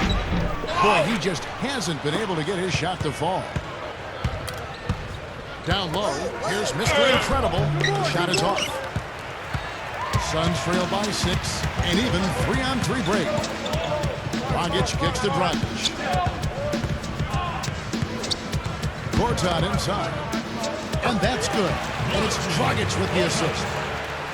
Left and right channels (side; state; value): both; identical; correlation 1.00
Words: Boy, he just hasn't been able to get his shot to fall. Down low, here's Mr. Incredible. The shot is off. Suns trail by 6, and even 3-on-3 break. Dragic kicks to Dragic. Gortat inside. And that's good. And it's Dragic with the assist.